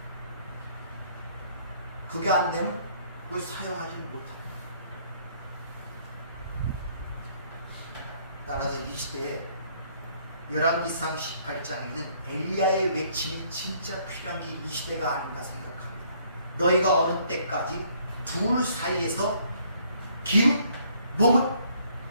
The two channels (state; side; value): inverted; both; correlation -0.64